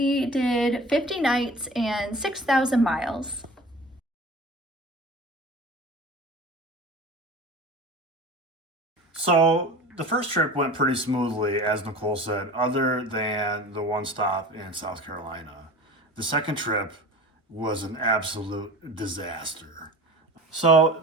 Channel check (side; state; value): both; normal; correlation 0.38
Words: did 50 nights and 6,000 miles. So the first trip went pretty smoothly, as Nicole said, other than the one stop in South Carolina. The second trip was an absolute disaster. So